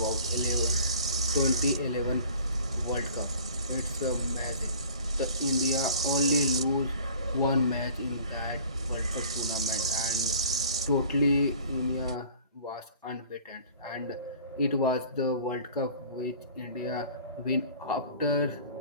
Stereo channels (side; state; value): both; inverted; correlation -0.47